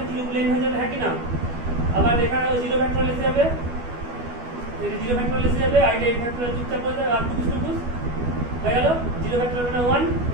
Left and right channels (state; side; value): late; left; 12 ms